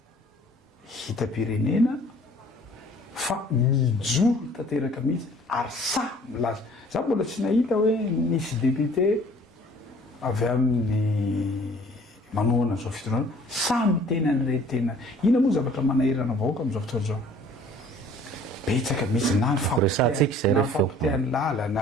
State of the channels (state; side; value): normal; both; correlation 0.53